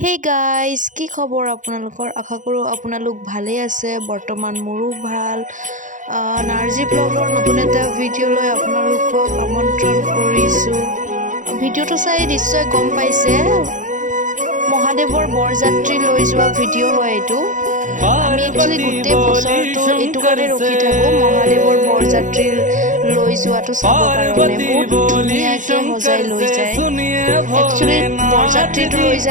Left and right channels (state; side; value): late; left; 0.37 ms